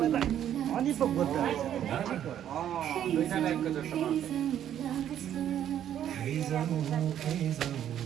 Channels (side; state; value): left; quieter; 10.5 dB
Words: अनि पो बुझ्छ